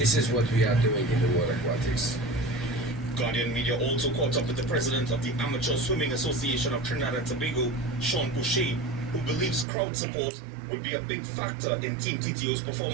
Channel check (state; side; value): drops out; left; at 9.7 s